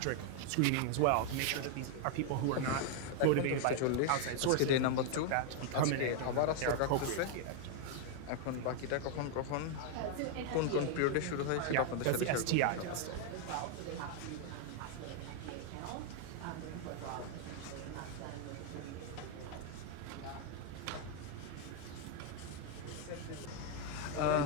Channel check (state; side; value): different; both; correlation 0.00